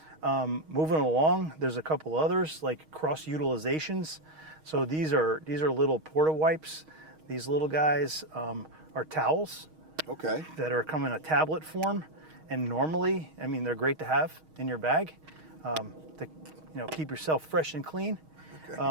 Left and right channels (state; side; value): late; left; 6.4 ms